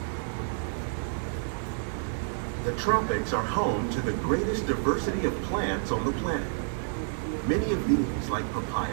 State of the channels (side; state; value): left; silent; digital silence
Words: The tropics are home to the greatest diversity of plants on the planet. Many of these, like